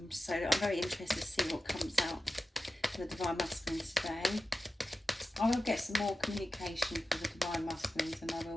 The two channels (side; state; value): both; normal; correlation 0.92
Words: So I'm very interested to see what comes out for the Divine Masculines today. I will get some more communication for the Divine Masculines, and I will